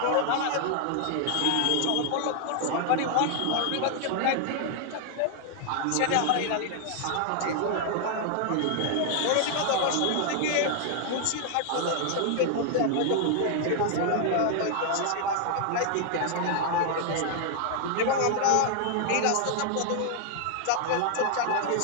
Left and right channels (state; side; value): different; both; correlation 0.00